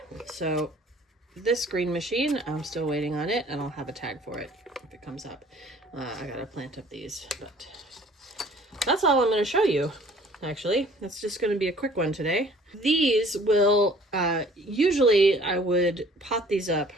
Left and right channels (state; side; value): normal; both; correlation 0.54